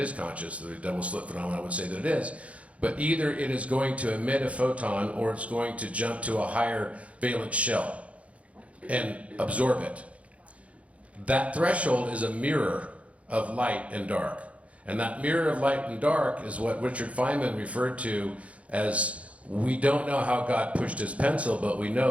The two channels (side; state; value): left; late; 0.064 ms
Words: conscious, the double slit phenomenon would say that it is, but either it is going to emit a photon or it's going to jump to a higher valence shell and absorb it. That threshold is a mirror of light and dark. And that mirror of light and dark is what Richard Feynman referred to as, we don't know how God pushed his pencil, but we